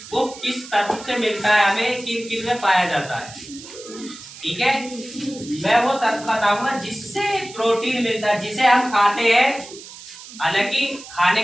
वो किस तत्व से मिलता है, हमें किन किन में पाया जाता है। ठीक है, मैं वो तत्व बताऊंगा जिससे प्रोटीन मिलता है, जिसे हम खाते हैं। हालांकि खाने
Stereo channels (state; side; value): noise; right; hiss, 16 dB below the sound